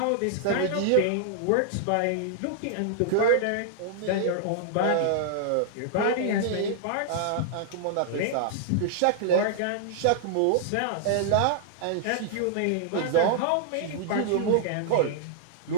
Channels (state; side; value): different; both; correlation -0.01